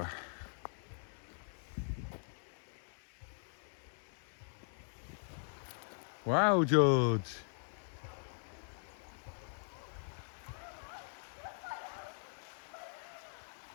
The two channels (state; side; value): silent; right; digital silence